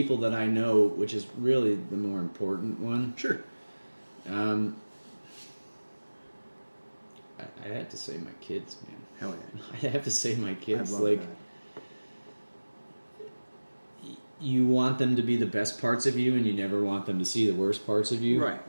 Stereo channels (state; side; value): inverted; both; correlation -1.00